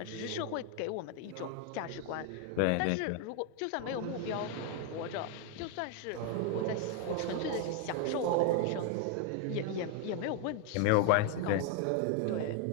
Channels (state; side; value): different; both; correlation 0.01